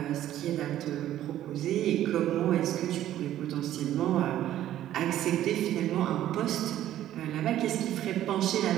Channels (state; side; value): quieter; left; 12.6 dB